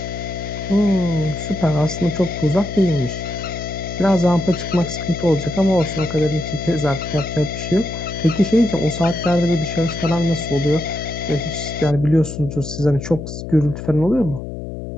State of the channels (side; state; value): left; noise; hum, 8 dB below the sound